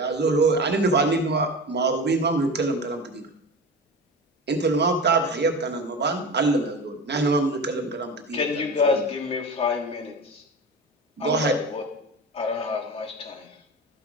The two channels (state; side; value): normal; both; correlation 0.30